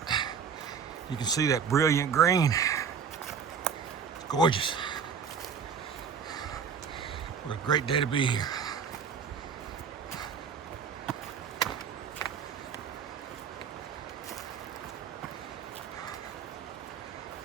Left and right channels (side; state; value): left; quieter; 6.7 dB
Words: You can see that brilliant green. It's gorgeous. What a great day to be here.